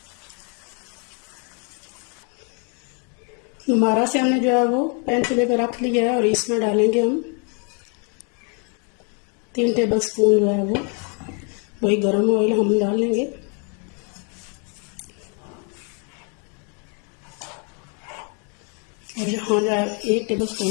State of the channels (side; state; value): right; quieter; 37.9 dB